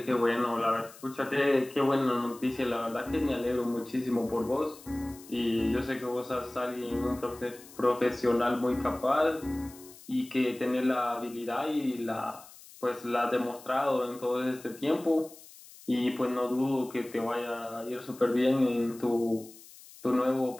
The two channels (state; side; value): noise; left; hiss, 20 dB below the sound